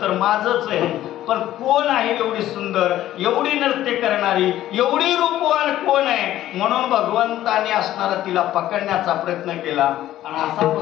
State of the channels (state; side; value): quieter; right; 13.4 dB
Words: तर माझंच आहे, पण कोण आहे एवढी सुंदर, एवढी नृत्य करणारी, एवढी रूपवान कोण आहे? म्हणून भगवंताने असणारा तिला पकडण्याचा प्रयत्न केला. आणि असा